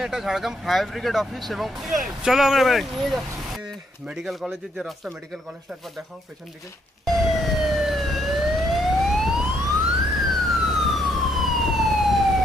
এটা ঝাড়গ্রাম ফায়ার ব্রিগেড অফিস এবং চলো আমরা মেডিকেল কলেজের যে রাস্তা, মেডিকেল কলেজটা একবার দেখাও পেছন দিকে।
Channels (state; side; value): normal; both; correlation 0.73